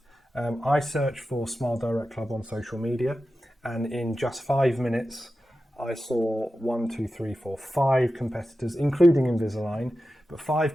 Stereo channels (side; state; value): both; normal; correlation 0.92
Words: I search for Smile Direct Club on social media, and in just 5 minutes, I saw 5 competitors, including Invisalign, but 5